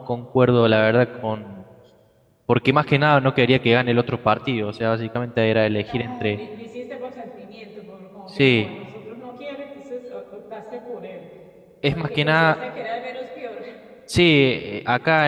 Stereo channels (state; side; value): identical; both; correlation 1.00